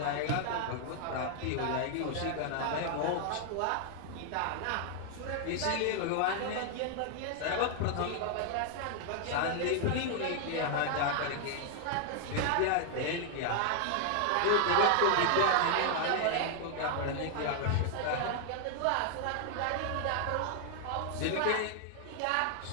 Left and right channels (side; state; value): both; different; correlation 0.00